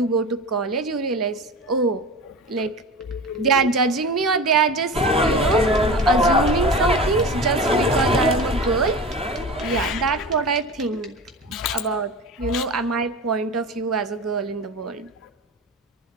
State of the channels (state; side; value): normal; both; correlation 0.31